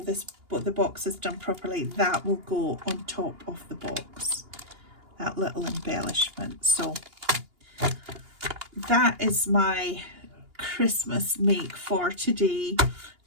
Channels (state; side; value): late; left; 2.8 ms